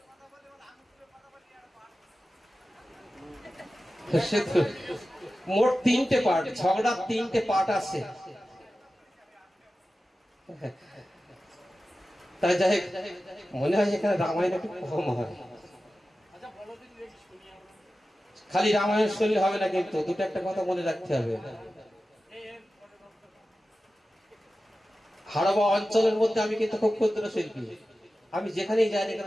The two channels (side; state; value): both; normal; correlation 0.94